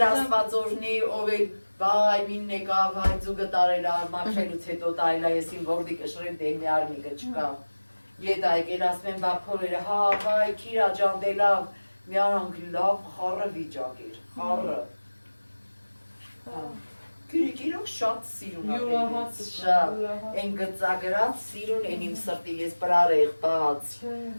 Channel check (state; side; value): inverted; both; correlation -1.00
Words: աստված օրնի, ով էլ վայ մին եկավ, հայ ձուգը տարել մաքրելուց հետո տարել ես իմ որդի կշրել դե մի արմիկը չկա։ Ետ այգել ասում եմ բապորերը, հա, վայ, քիրա ջան դե լավ, մի արանք լավ խառը վիճակ էր, խառը։ Գիրիկ իրոք շատ սիրուն ապետից, շատ, են գծագրած սիրուն, են իմ սրտի ես պրարեղ բաց,